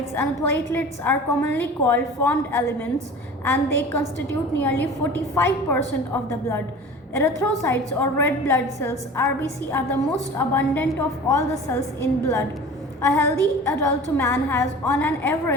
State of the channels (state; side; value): normal; both; correlation 0.39